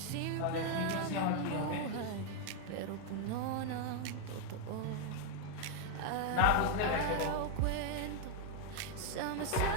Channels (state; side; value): different; both; correlation 0.01